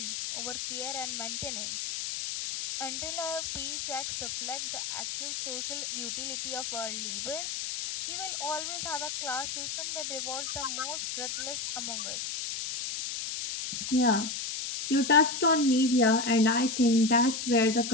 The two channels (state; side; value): noise; left; hiss, 4 dB below the sound